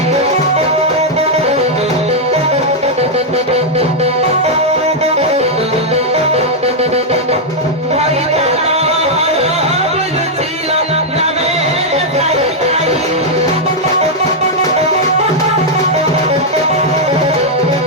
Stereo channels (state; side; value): normal; both; correlation -0.02